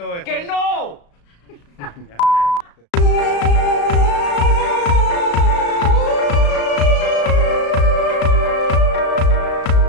esto. ¡Que no! Ya,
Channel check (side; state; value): right; late; 35 ms